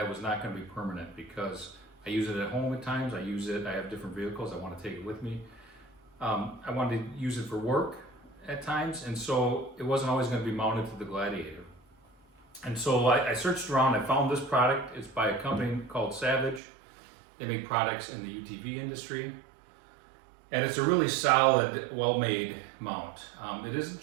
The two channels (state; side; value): drops out; left; at 16.6 s